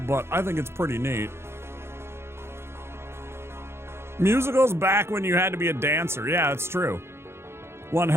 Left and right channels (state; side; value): late; left; 0.12 ms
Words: I think it's pretty neat. Musicals back when you had to be a dancer. Yeah, it's true. One